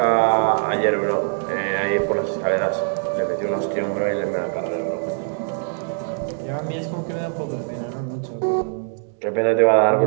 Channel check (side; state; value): left; silent; digital silence